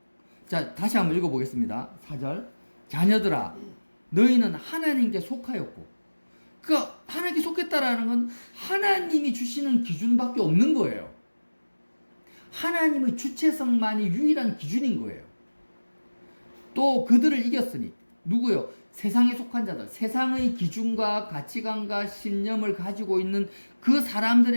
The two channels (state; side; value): inverted; both; correlation -1.00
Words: 자, 다시 한번 읽어보겠습니다. 4절. 자녀들아, 너희는 하나님께 속하였고, 그러니까 하나님께 속했다라는 건 하나님이 주시는 기준밖에 없는 거예요. 하나님의 주체성만이 유일한 기준인 거예요. 또 그들을 이겼으니, 누구요? 세상에 속한 자들, 세상의 기준과 가치관과 신념을 가지고 있는 그